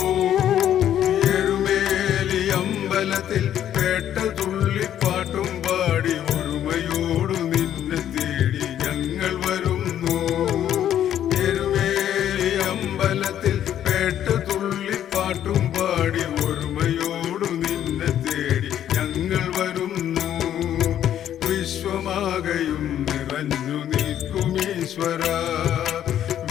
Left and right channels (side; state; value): right; quieter; 10.7 dB